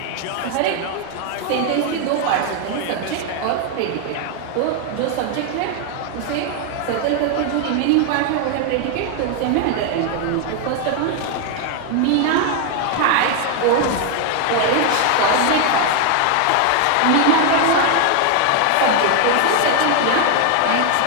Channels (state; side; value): different; both; correlation 0.00